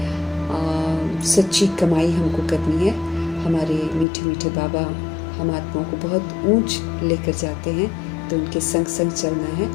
सच्ची कमाई हमको करनी है। हमारे मीठे मीठे बाबा हम आत्माओं को बहुत ऊंच लेकर जाते हैं, तो उनके संग संग चलना है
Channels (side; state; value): right; drops out; at 4.0 s